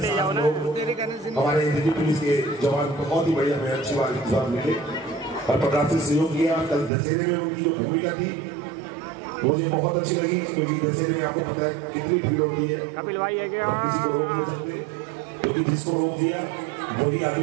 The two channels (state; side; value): drops out; left; at 6.9 s